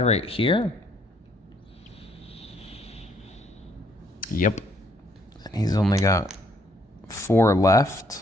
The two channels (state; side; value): normal; both; correlation 0.68